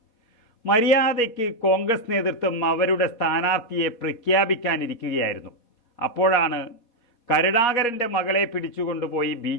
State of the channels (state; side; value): late; right; 4.2 ms